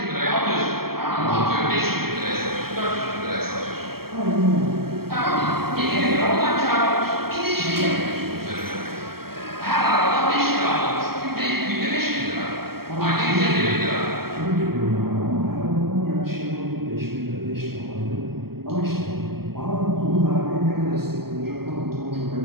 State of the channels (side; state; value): left; late; 0.94 ms